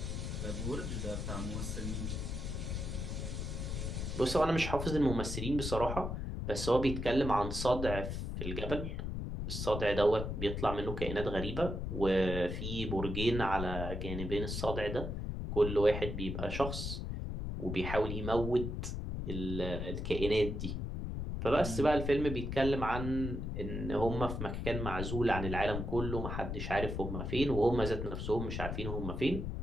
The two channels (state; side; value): noise; left; rumble, 4 dB below the sound